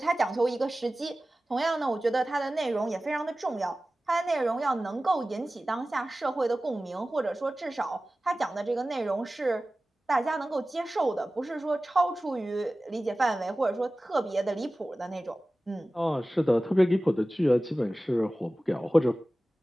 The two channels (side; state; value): both; normal; correlation 0.96